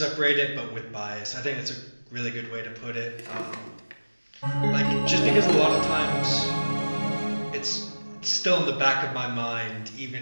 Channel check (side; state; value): both; inverted; correlation -1.00